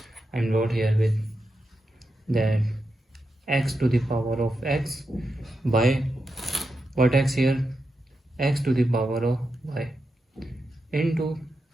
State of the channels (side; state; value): both; normal; correlation 0.87